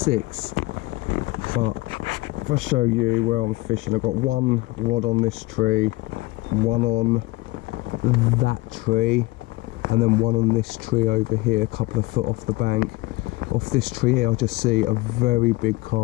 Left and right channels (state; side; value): quieter; right; 20.8 dB